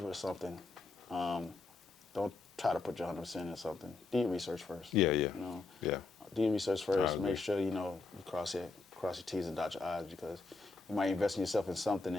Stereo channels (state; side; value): quieter; right; 3.7 dB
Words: with something, don't try to put your 100% in something. Do your research first. Yeah. Do your research first. Make sure you cross your T's and dot your I's, because you might invest in yourself in something